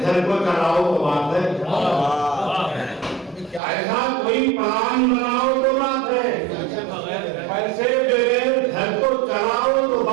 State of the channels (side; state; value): left; drops out; at 3.6 s